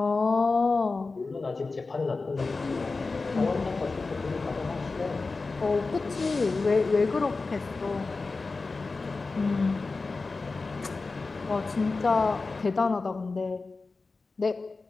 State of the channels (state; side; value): quieter; right; 3.9 dB